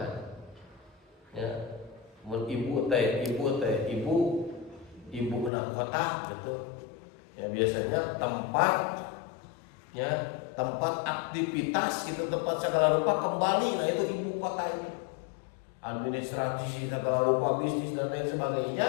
ya. Ibu enam kota gitu ya, biasanya tempat aktivitas gitu, tempat segala rupa kembali. Nah, itu ibu kota ini administrasi segala rupa bisnis dan lain sebagainya.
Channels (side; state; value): right; drops out; at 5.5 s